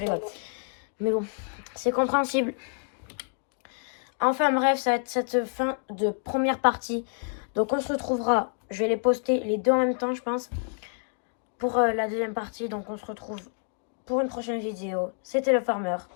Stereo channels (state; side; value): silent; right; 55 dB below the other